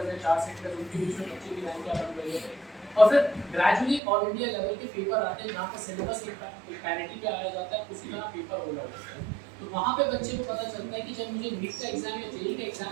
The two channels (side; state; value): left; drops out; at 4.0 s